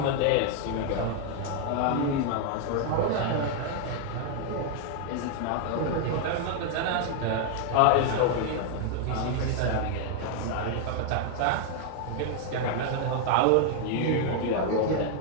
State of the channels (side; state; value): both; different; correlation 0.00